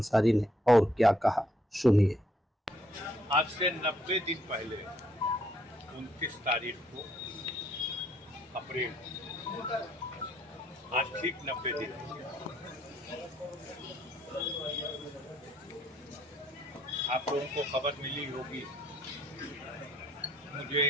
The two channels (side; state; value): both; normal; correlation 0.69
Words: ने और क्या कहा, सुनिए। आज से 90 दिन पहले 29 तारीख को अप्रैल, आज ठीक 90 दिन आप लोगों को खबर मिली होगी। मुझे